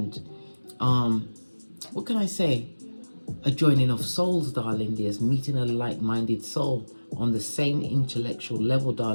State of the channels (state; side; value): inverted; both; correlation -1.00